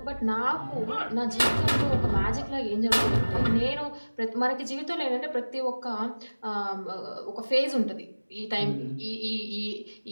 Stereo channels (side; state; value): both; inverted; correlation -1.00